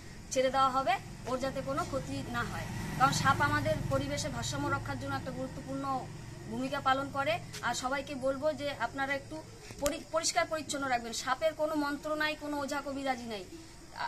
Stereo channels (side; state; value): both; identical; correlation 1.00